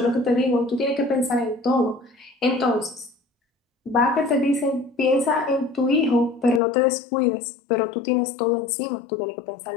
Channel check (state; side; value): drops out; right; at 6.6 s